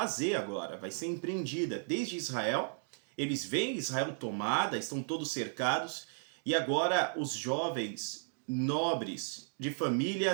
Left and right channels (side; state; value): left; silent; digital silence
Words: agora. Vai ser empreendida desde Israel. Eles veem Israel tomada, estão todos cercados, e agora os jovens nobres, de